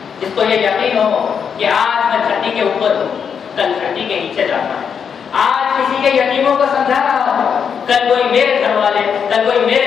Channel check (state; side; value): quieter; right; 7.0 dB